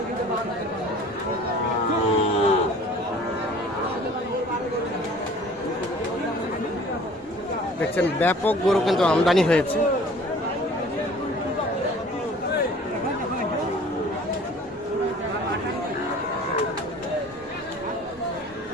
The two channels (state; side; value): normal; both; correlation 0.49